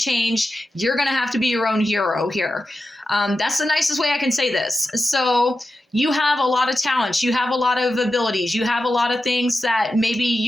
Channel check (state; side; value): normal; both; correlation 0.91